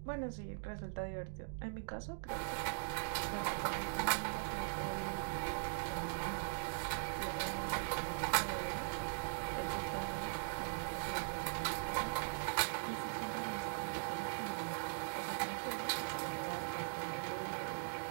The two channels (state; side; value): silent; left; digital silence